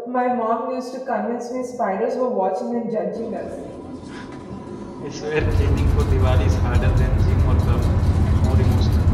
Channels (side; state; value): both; identical; correlation 1.00